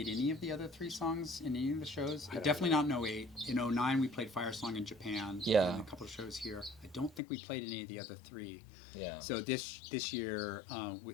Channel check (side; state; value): right; drops out; at 7.2 s